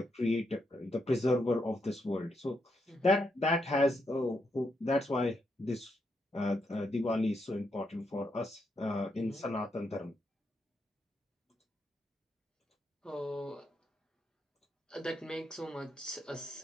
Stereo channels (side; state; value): both; normal; correlation 0.80